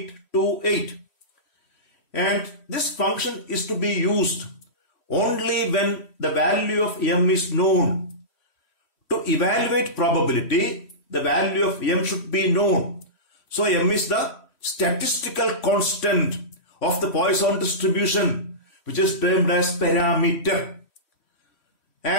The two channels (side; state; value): right; late; 3.1 ms